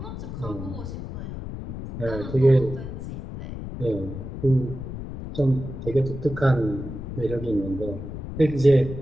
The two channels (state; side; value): noise; left; rumble, 8 dB below the sound